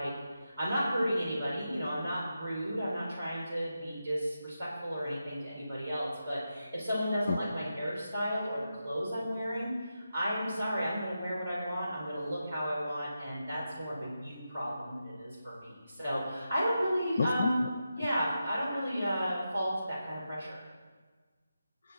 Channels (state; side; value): inverted; both; correlation -0.89